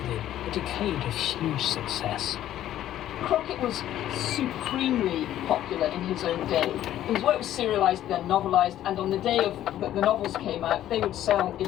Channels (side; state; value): right; quieter; 12.4 dB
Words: a decade of huge success. Crockett was supremely popular in his own day. His work was serialised, then novelised, and on the day that the novels came out, they would sell